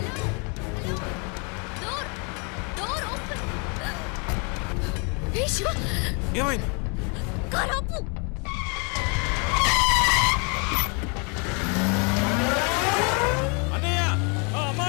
ఏమైంది? కారాపు అన్నయ్య,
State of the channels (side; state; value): right; quieter; 35.0 dB